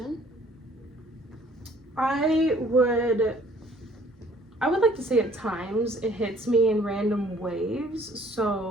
I would like to say at times it hits me in random waves.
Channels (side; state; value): both; normal; correlation 0.58